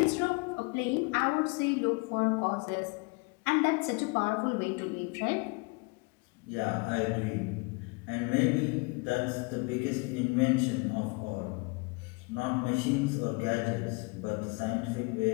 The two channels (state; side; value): quieter; right; 29.7 dB